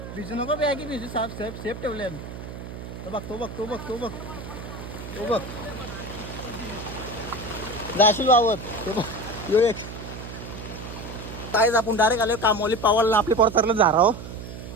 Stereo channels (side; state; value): right; noise; hum, 10 dB below the sound